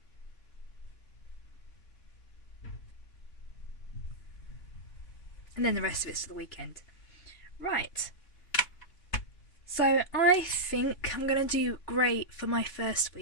And then the rest of it's to the weekend. Right. So I think I'm going to do grey for my first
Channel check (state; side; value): late; right; 3.5 ms